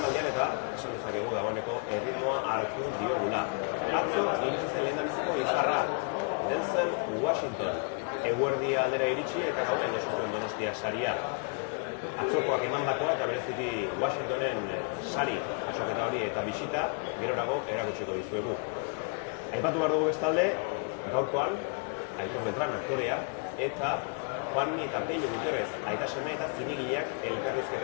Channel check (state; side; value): quieter; right; 38.9 dB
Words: eta esan dezakegu dagoeneko erritmoa hartu diogula. Atzo iritsi zen lehendabiziko izarra, Denzel Washington. Eguerdi aldera iritsi eta gauean jaso zuen Donostia saria. Atzokoak emandakoa eta bereziki Washingtonen sari jasoketa hori eta bisita gerorago erakutsiko dizuegu. Aipatu behar dugu bestalde, gaurkoan Aitor Beltran aktorea eta Juanmi eta Pello Guterrez aita seme eta zinegileak